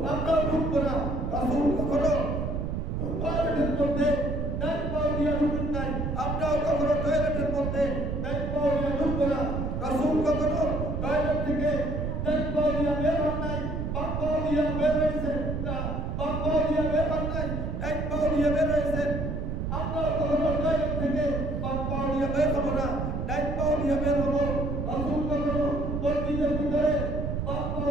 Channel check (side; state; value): right; noise; rumble, 2 dB below the sound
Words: আমরা ঢুকবো না রসুল কখনো টয়লেটের মধ্যে ডাইন পাও দিয়ে ঢুকতেন নাই আমরাও কখনো টয়লেটের মধ্যে ডাইন পাও দিয়ে ঢুকবো না রসুল কখনো টয়লেট থেকে ডাইন পাও দিয়ে বের হন নাই বাম পাও দিয়ে বের হয়েছে বাম পাও দিয়ে বের হন নাই ডাইন পাও দিয়ে বের হয়েছে আমরাও কখনো টয়লেট থেকে বাম পাও দিয়ে বের হবো না ডাইন পাও দিয়ে বের হবো রসুল কখনো মসজিদের ভিতরে বাম পাও